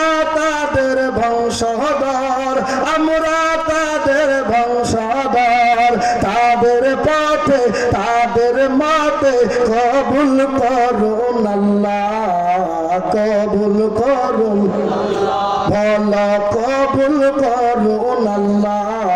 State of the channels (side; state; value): right; noise; hum, 27 dB below the sound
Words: তাদের বংশধর, আমরা তাদের বংশধর, তাদের পথে তাদের মাতে কবুল করুন আল্লাহ, কবুল করুন বলো কবুল করুন